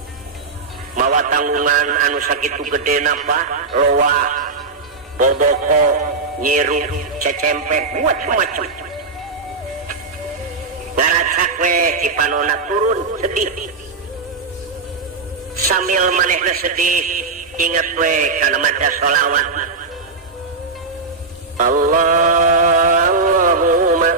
mawa tanggungan anu sakitu gedena Pak loa boboko nyiru cecempet macem-macem ngaracak we cipanona turun sedih sambil manehna sedih inget we kana maca sholawat Allahumma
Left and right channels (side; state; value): left; quieter; 4.1 dB